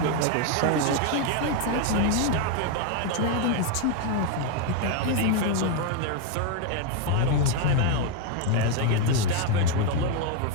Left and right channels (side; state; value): both; different; correlation 0.01